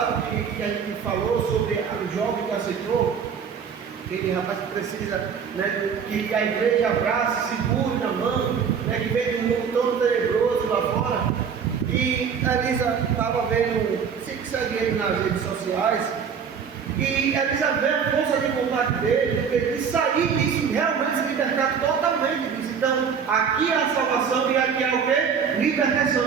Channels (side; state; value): left; quieter; 6.8 dB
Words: que a gente falou sobre o jovem que aceitou, aquele rapaz que precisa, né, que a igreja abraça, segure na mão, né, que vem de um mundo todo tenebroso lá fora. E a Elisa estava vendo, sempre segue ele nas redes sociais, e a Elisa vê a força de vontade dele, de sair disso, realmente se libertar totalmente disso. Então, aqui é a salvação e aqui é o quê?